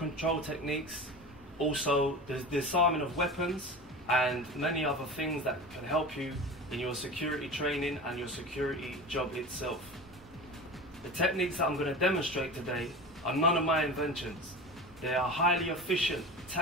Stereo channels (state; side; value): normal; both; correlation 0.31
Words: techniques, also the disarming of weapons and many other things that can help you in your security training and your security job itself. The techniques that I'm going to demonstrate today are none of my inventions. They are highly efficient